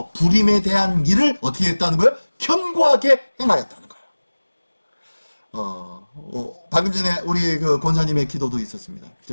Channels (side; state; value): both; inverted; correlation -1.00